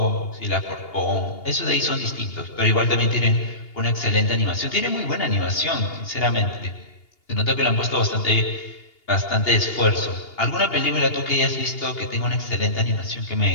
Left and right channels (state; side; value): late; right; 2.8 ms